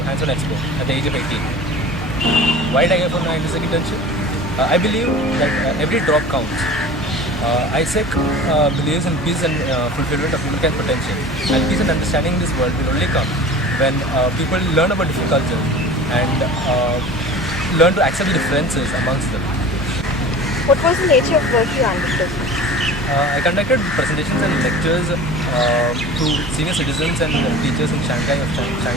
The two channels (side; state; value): both; normal; correlation 0.39